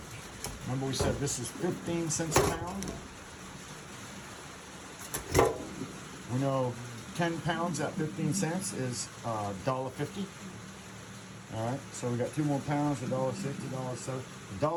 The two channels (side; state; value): both; identical; correlation 1.00